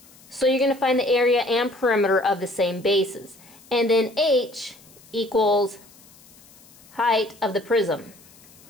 So you're going to find the area and perimeter of the same bases. And then H equals height of the prism.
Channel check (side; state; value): left; noise; hiss, 25 dB below the sound